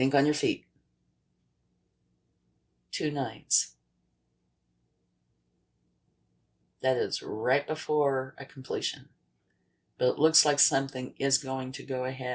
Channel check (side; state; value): both; identical; correlation 1.00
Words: on your feet. 2 9s. That is right before a completion. But it looks like something is going to go